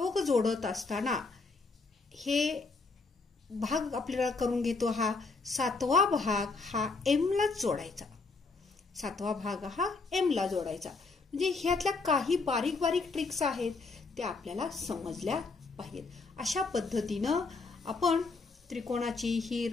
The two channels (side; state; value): right; quieter; 4.0 dB